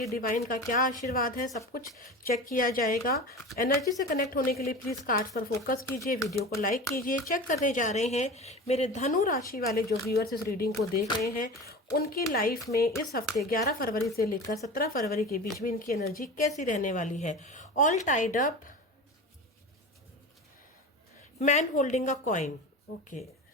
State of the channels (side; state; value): both; normal; correlation 0.32